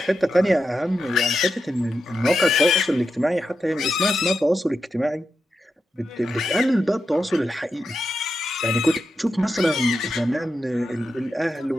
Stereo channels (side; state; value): both; normal; correlation 0.88